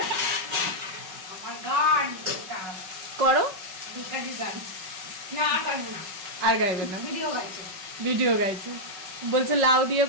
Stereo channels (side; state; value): left; late; 5.4 ms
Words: করো, আর গাইবে না, ভিডিও গাইছে। বলছে লাউ দিয়ে